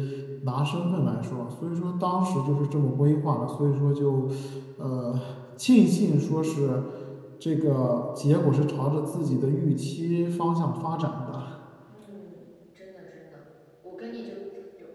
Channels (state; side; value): identical; both; correlation 1.00